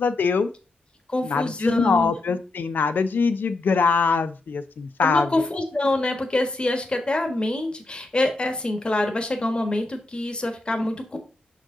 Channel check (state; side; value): quieter; right; 3.1 dB